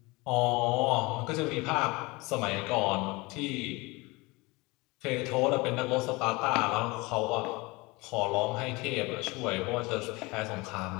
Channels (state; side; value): quieter; right; 24.2 dB